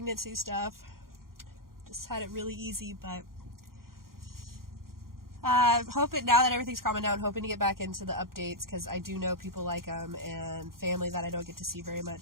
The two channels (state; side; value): late; left; 0.92 ms